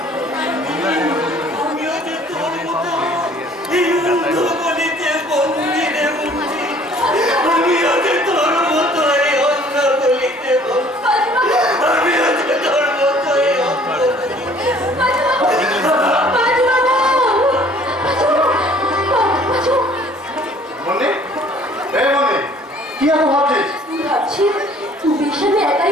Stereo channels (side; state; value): both; normal; correlation 0.55